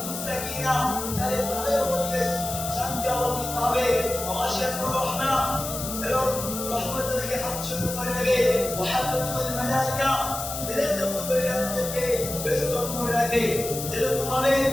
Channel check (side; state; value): left; noise; hiss, 6 dB below the sound